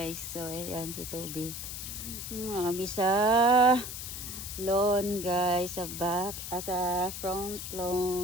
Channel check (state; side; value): noise; left; hiss, 7 dB below the sound